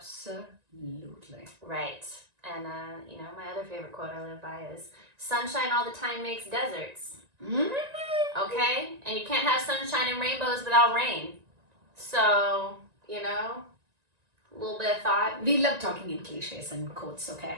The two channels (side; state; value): left; late; 1.9 ms